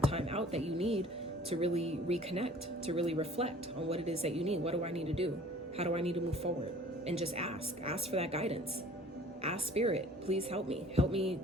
time out that you need to really reconnect, to really reflect on what it is that you need. What do I need to do? How do I need to move forward? And just ask for that guidance. Ask Spirit, please help me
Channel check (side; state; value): both; normal; correlation 0.49